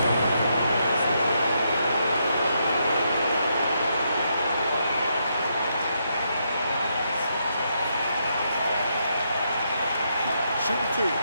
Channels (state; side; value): inverted; both; correlation -0.79